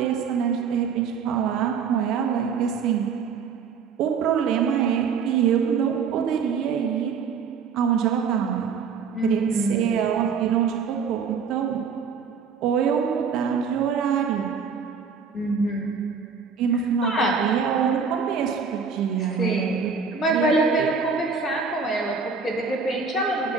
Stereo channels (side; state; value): left; quieter; 5.8 dB